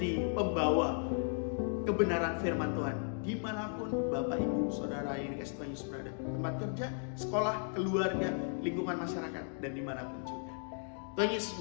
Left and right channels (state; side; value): silent; right; 54 dB below the other